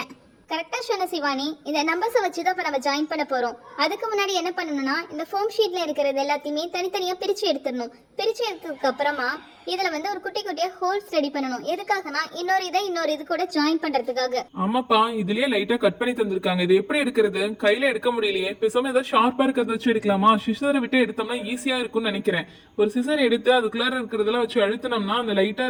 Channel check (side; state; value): both; identical; correlation 1.00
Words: கரெக்டா சொன்ன சிவானி. இந்த நம்பர்ஸை வச்சு தான் இப்போ நம்ம ஜாயின் பண்ண போறோம். அதுக்கு முன்னாடி என்ன பண்ணணும்னா, இந்த ஃபோம் ஷீட்ல இருக்கிறது எல்லாத்தையுமே தனித்தனியா பிரிச்சு எடுத்துடணும். பிரிச்சு எடுத்ததுக்கு அப்புறமா இதுல வந்து ஒரு குட்டி குட்டியா ஹோல்ஸ் ரெடி பண்ணணும். எதுக்காகனா இன்னொரு இது கூட ஜாயின் பண்றதுக்காக. ஆமாப்பா, இதுலயே லைட்டா கட் பண்ணி தந்திருக்காங்க. இது எப்படி எடுக்கிறது? கையில எடுக்க முடியலையே. பேசாம ஏதாவது ஷார்ப்பா இருக்கிறத வச்சு எடுக்கலாமா? சிசரை விட்டு எடுத்தோம்னா ஈஸியா இருக்கும்னு நினைக்கிறேன். ஒரு சிசர் எடுத்து அதுக்குள்ளார இருக்கிறதெல்லாம் வச்சு அழுத்தினோம்னா அந்த லைட்டா